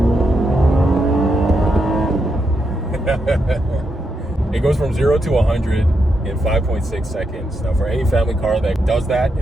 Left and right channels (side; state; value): both; normal; correlation 0.82